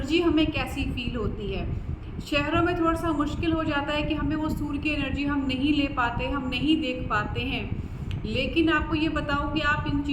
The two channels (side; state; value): both; identical; correlation 1.00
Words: हमें कैसी फील होती है। शहरों में थोड़ा सा मुश्किल हो जाता है कि हमें वो सूर्य की एनर्जी हम नहीं ले पाते, हम नहीं देख पाते हैं। लेकिन आपको ये बताऊं कि आप इन